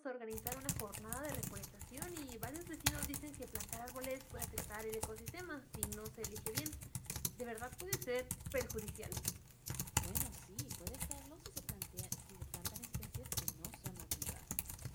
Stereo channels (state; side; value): identical; both; correlation 1.00